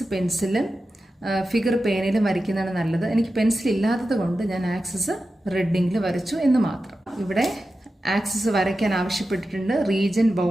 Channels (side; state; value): both; normal; correlation 0.92